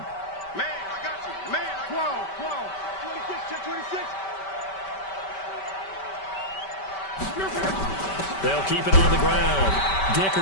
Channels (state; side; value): late; right; 5.2 ms